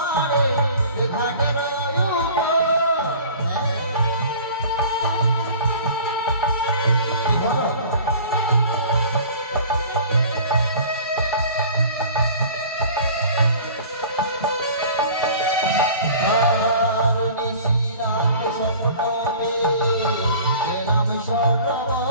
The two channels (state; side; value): inverted; both; correlation -0.44